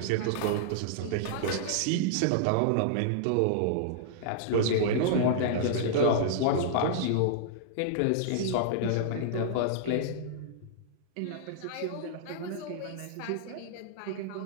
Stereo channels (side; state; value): both; different; correlation -0.02